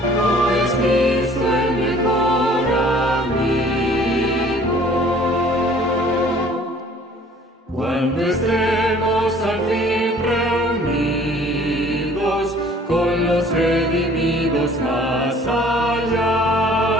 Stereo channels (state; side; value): normal; both; correlation 0.53